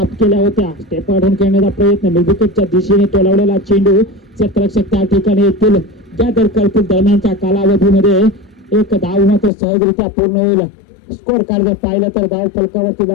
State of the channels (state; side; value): drops out; right; at 9.5 s